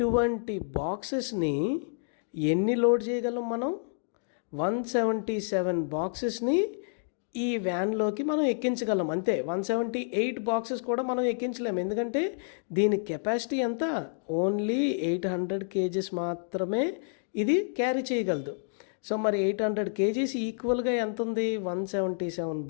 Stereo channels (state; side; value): silent; right; digital silence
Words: బాక్సెస్ని ఎన్ని లోడ్ చేయగలం మనం? 177 బాక్సెస్ని ఈ వ్యాన్లోకి మనం ఎక్కించగలం అంతే. 178 బాక్సెస్ కూడా మనం ఎక్కించలేము, ఎందుకంటే దీని కెపాసిటీ ఎంత? ఓన్లీ 800 kgs మాత్రమే ఇది క్యారీ చేయగలదు. సో మరి 800 kgs ఈక్వల్గా ఎంత ఉంది? 177